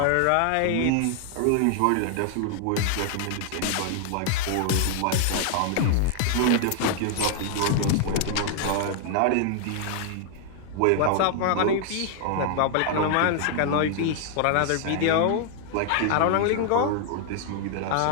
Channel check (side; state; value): both; different; correlation 0.00